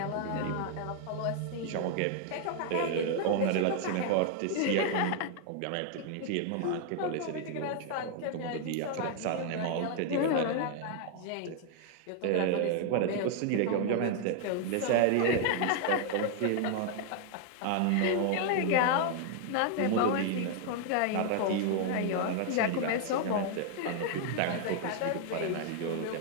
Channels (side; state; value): both; different; correlation 0.00